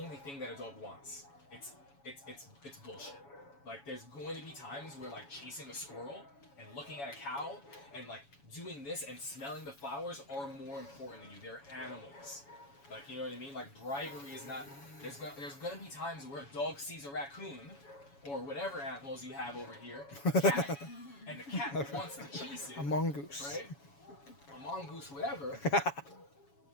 thing that a dog wants. It's bullshit. Like there's going to be times where like chasing a squirrel and looking at a cow and like doing this and smelling the flowers are more important than you. They're animals. Like, you know what I mean? Like bribery is not. There's gonna be times where a dog sees a raccoon or whatever animals you have over here, cat, and the cat wants to chase it. A mongoose. Right? A mongoose, whatever.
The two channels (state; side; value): late; right; 7.2 ms